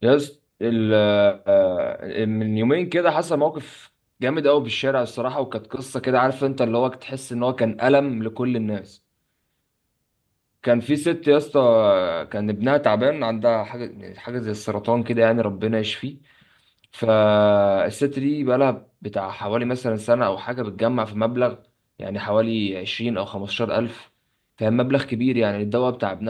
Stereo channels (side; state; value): both; identical; correlation 1.00